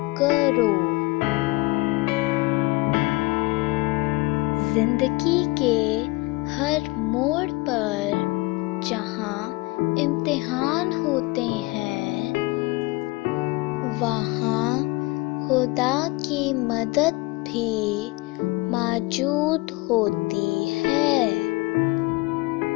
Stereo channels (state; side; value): quieter; right; 23.2 dB